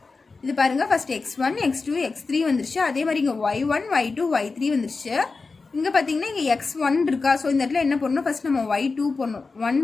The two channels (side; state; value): right; quieter; 4.2 dB